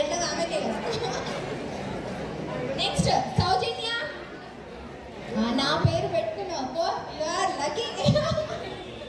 ఎట్లా ఆమె తెలుసు. నెక్స్ట్ సౌజన్య. నా పేరు పెట్టుకున్నావు you are lucky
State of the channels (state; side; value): identical; both; correlation 1.00